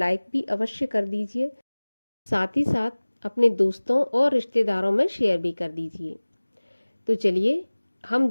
भी अवश्य कर दीजिए। साथ ही साथ अपने दोस्तों और रिश्तेदारों में शेयर भी कर दीजिए। तो चलिए हम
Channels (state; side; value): inverted; both; correlation -1.00